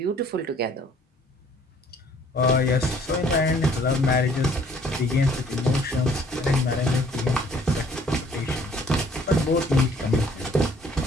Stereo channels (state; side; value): normal; both; correlation 0.59